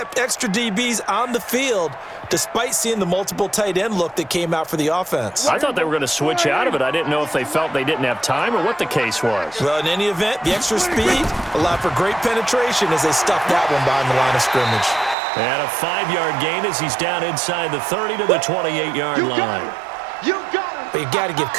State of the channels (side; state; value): left; drops out; at 15.2 s